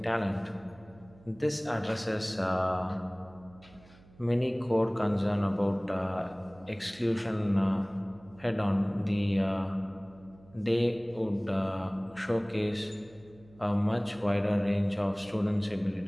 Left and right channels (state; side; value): noise; right; hum, 25 dB below the sound